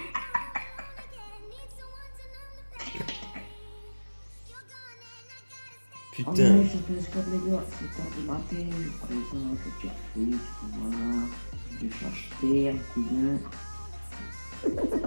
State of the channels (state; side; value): inverted; both; correlation -1.00